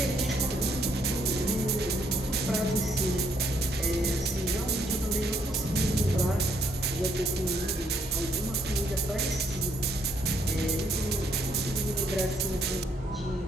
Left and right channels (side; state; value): both; normal; correlation 0.70